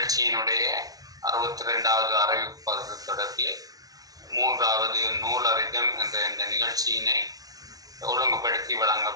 62வது அறிவிப்பது தொடர்பில் 3வது நூலறிதம் என்ற இந்த நிகழ்ச்சியினை ஒழுங்குபடுத்தி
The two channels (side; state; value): left; late; 0.18 ms